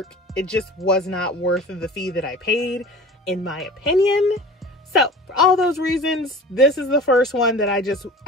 it just was not worth the fee that I paid, in my opinion. So for all those reasons, this is the first one that I just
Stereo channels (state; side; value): normal; both; correlation 0.39